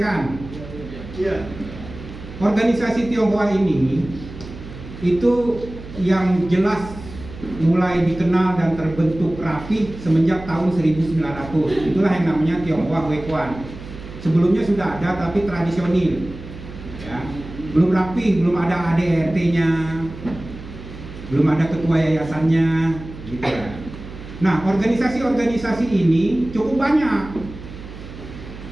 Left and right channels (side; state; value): right; noise; hum, 14 dB below the sound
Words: Iya. Organisasi Tionghoa ini itu yang jelas mulai dikenal dan terbentuk rapi semenjak tahun 1900. Itulah yang namanya Tionghoa Huekuan. Sebelumnya sudah ada tapi tradisional, ya. Belum rapi, belum ada ADRT-nya, belum ada ketua yayasannya, gitu ya. Nah, organisasi-organisasi ini cukup banyak.